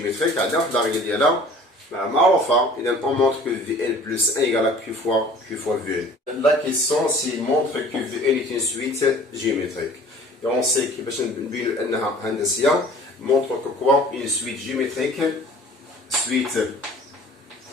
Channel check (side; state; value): both; normal; correlation 0.48